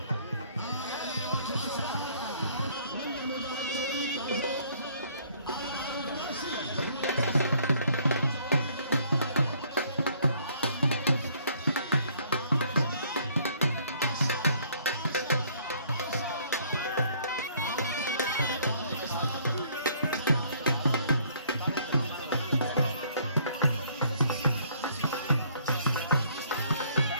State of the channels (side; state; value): both; inverted; correlation -0.62